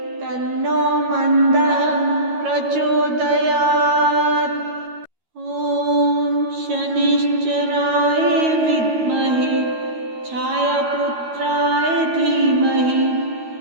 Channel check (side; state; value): left; late; 13 ms